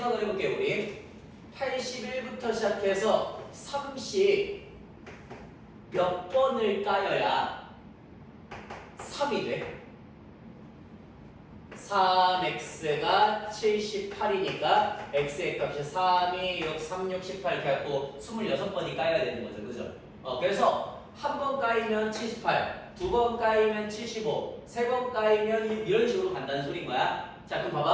해볼게요, 우리. 81부터 시작해서 30 몇 번을 까여야 3이 돼? 3x가 78이니까 x의 값이 3, 2, 6, 3, 6, 18 이렇게 해갖고 26번이 까여야 되는 거죠. 그죠? 그래서 한 번 까이면 78, 두 번 까이면 75, 세 번 까이면 이런 식으로 간다는 소린 거야. 자, 그럼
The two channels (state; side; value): identical; both; correlation 1.00